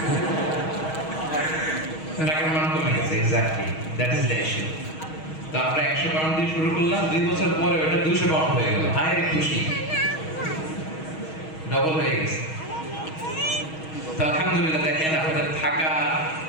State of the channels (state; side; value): late; right; 6.3 ms